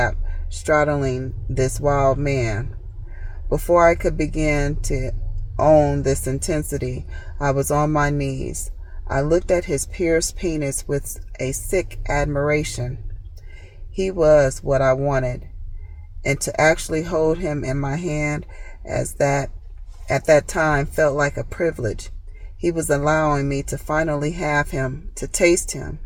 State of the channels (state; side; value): identical; both; correlation 1.00